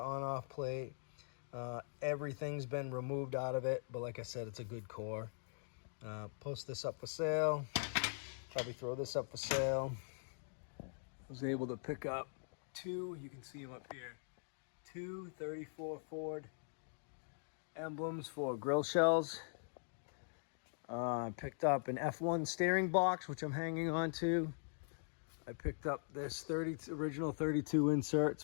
on-off plate. Everything's been removed out of it, but like I said, it's a good core. Post this up for sale. Probably throw this up for sale. I was able to pick up two, you can see them up here, two 34 Ford emblems for grill shells. I picked up an F1 steering box, which I'm hanging on to. I picked up this original 32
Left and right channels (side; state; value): right; silent; digital silence